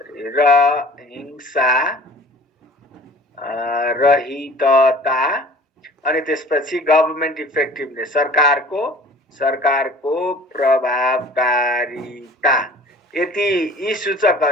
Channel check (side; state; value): both; normal; correlation 0.46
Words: र हिंसा रहितता अनि त्यसपछि गभर्नमेन्ट इफेक्टिभनेस, सरकारको प्रभावकारिता। यी